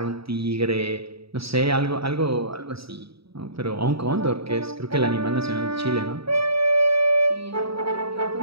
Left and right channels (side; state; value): left; late; 0.76 ms